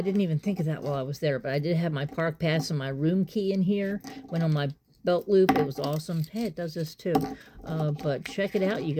even think of that while I was there, but I did have my park pass and my room key in here. Went on my belt loop. It was awesome. Hey, it does this too. But check it out, you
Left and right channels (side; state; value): both; identical; correlation 1.00